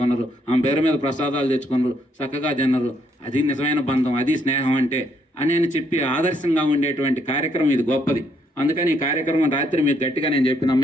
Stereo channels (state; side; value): normal; both; correlation 0.72